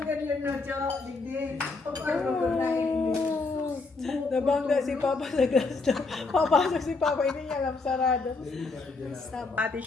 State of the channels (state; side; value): quieter; right; 3.9 dB